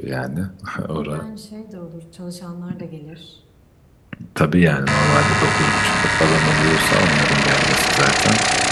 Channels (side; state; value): both; identical; correlation 1.00